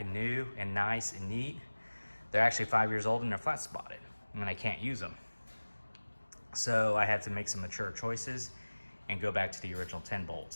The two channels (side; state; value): both; inverted; correlation -1.00